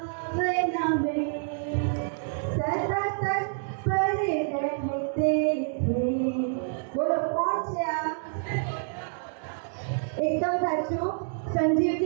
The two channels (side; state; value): left; silent; digital silence